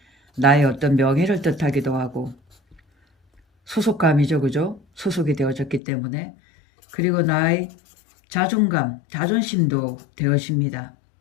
나의 어떤 명예를 뜻하기도 하고 소속감이죠, 그죠? 소속이 되어졌기 때문에. 그리고 나의 자존감, 자존심도 되어집니다.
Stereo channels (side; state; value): right; drops out; at 5.8 s